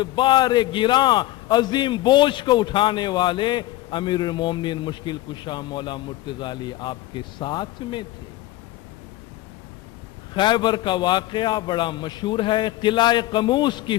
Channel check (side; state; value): right; quieter; 16.7 dB